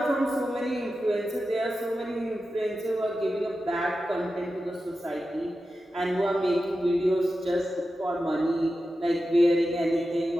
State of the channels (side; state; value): both; normal; correlation 0.92